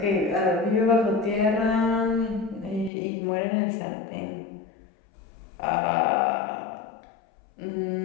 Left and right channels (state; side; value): drops out; right; at 2.9 s